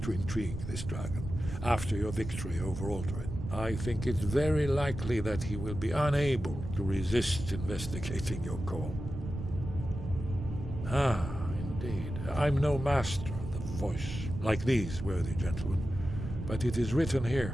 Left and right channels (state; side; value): noise; right; rumble, 7 dB below the sound